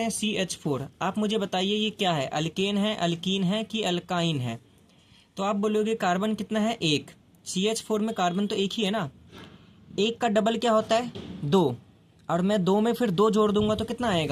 CH4। आप मुझे बताइए ये क्या है, अल्केन है, अल्कीन है कि अल्काइन है। तो आप बोलोगे कार्बन कितना है, एक। CH4 में कार्बन तो एक ही है ना, एक का डबल क्या होता है, 2, और मैं 2 में फिर 2 जोड़ दूंगा तो कितना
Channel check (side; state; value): both; identical; correlation 1.00